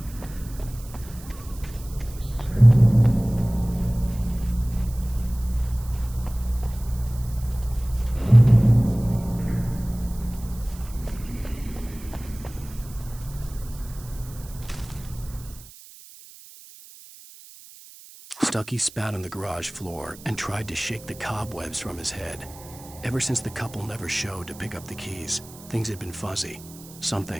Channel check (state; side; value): noise; right; hiss, 19 dB below the sound